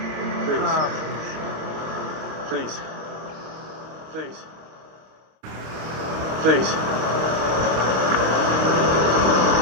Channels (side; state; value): left; late; 26 ms